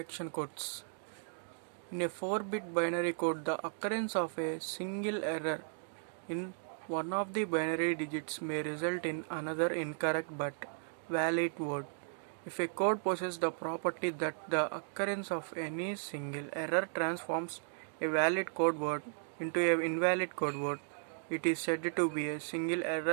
codes. In a 4-bit binary code, the occurrence of a single error in one of the binary digits may result in another incorrect but valid word. If a code possesses the property that the occurrence of any single error transforms a valid code word into an invalid code word, it is said to be a single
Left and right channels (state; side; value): silent; left; digital silence